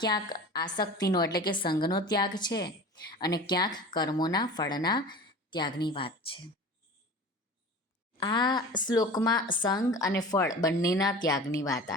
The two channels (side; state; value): both; normal; correlation 0.37